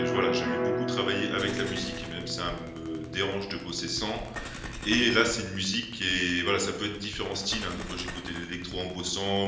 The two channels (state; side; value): identical; both; correlation 1.00